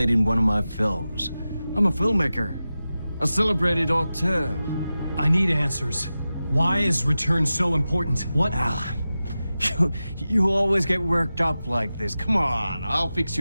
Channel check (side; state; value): both; inverted; correlation -0.94